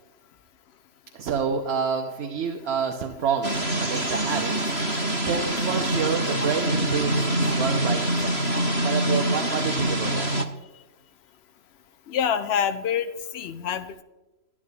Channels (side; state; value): right; late; 3.0 ms